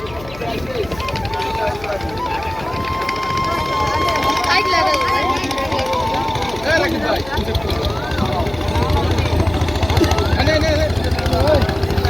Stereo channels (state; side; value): noise; left; hum, 17 dB below the sound